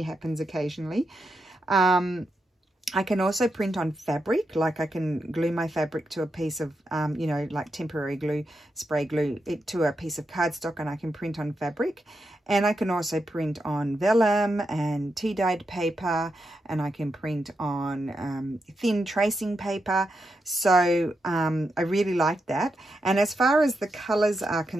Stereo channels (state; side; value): normal; both; correlation 0.85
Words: happens occasionally. I can also print on fabric, like I can glue my fabric to a piece of, you know, like temporary glue, spray glue it to a piece of cardstock, and I can print on fabric. And I can also print on vellum and tea-dyed paper, and I can print on thin tracing paper. So I really like that. And as far as the colours are